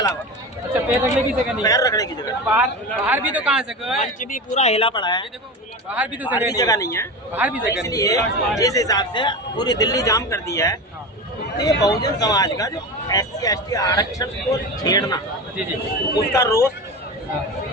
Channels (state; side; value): normal; both; correlation 0.26